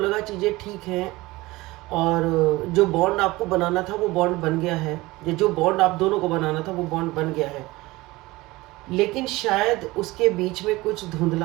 चीज़ें ठीक हैं और जो बॉन्ड आपको बनाना था वो बॉन्ड बन गया है। ये जो बॉन्ड आप दोनों को बनाना था वो बॉन्ड बन गया है। लेकिन शायद उसके बीच में कुछ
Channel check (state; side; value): quieter; left; 20.4 dB